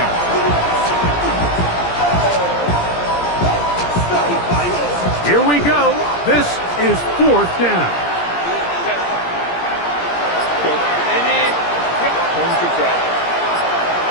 Here we go. This is 4th down.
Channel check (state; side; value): late; right; 17 ms